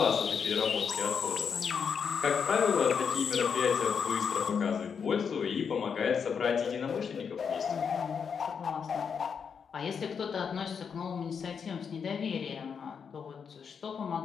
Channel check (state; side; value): quieter; right; 6.6 dB